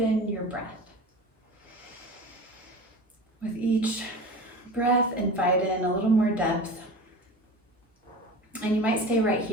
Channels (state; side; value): normal; both; correlation 0.34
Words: your breath. With each breath, invite in a little more depth. And you might stay right